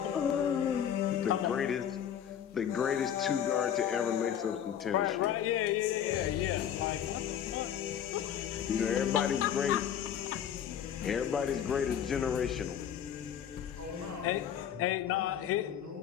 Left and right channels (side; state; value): right; quieter; 9.3 dB